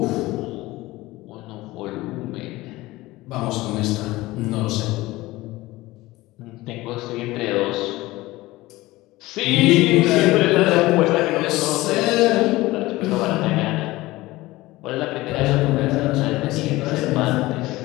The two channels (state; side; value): quieter; right; 19.0 dB